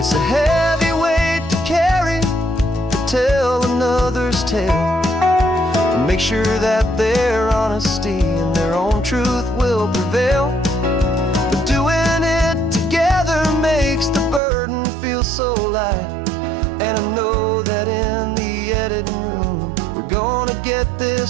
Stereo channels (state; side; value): drops out; left; at 14.4 s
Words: a heavy weight to carry, to tell another's tale, and make sure that their honesty and their own truth will prevail. But doing it together makes the burden feel so light. And I know that in the editing room we're gonna get